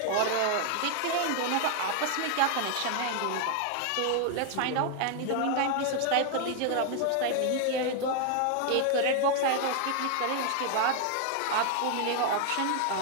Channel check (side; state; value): both; different; correlation 0.00